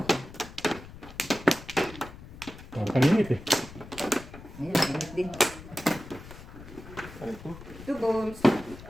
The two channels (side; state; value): left; noise; rumble, 16 dB below the sound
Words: Parang paninit eh. Ayan, mainit din. Ano ito? 2 balls.